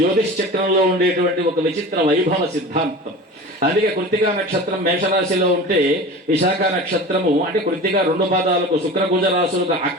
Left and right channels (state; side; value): normal; both; correlation 0.35